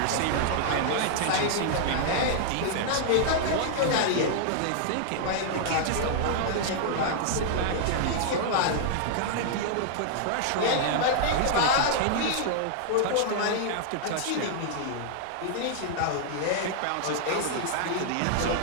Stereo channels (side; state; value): both; different; correlation -0.01